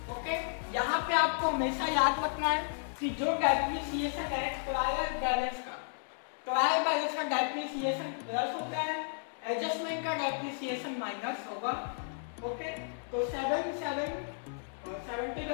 ओके, यहाँ पे आपको हमेशा याद रखना है कि जो डेप्रिसिएशन है ट्रायल बैलेंस का डेप्रिसिएशन प्लस होता है, एडजस्टमेंट का डेप्रिसिएशन माइनस होगा। ओके, तो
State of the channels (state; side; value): silent; right; digital silence